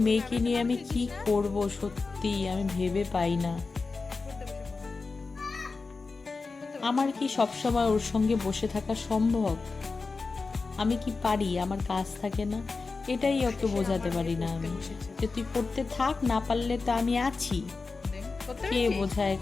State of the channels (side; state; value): right; quieter; 4.2 dB